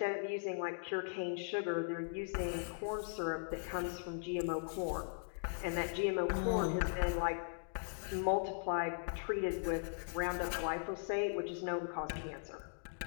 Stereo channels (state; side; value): silent; right; digital silence